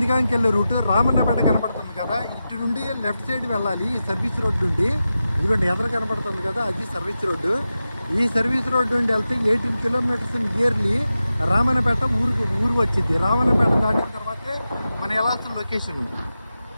వెళ్ళే రూటు. రామన్నపేట కనపడుతుంది కదా, ఇటు నుండి లెఫ్ట్ సైడ్ వెళ్ళాలి ఈ సర్వీస్ రోడ్ నుండి. ఇదిగోండి ఎదురు కనపడుతుంది కదా, అది సర్వీస్ రోడ్డు. ఈ సర్వీస్ రోడ్ నుండి వెళ్తే 18 kilometers నియర్లీ రామన్నపేట ఊరు వచ్చింది. రామన్నపేట దాటిన తర్వాతే మనం వెళ్ళాల్సిన లొకేషన్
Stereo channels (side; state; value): both; inverted; correlation -0.92